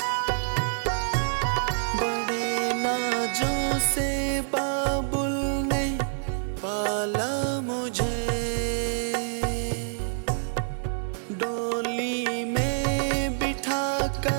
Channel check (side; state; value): left; silent; digital silence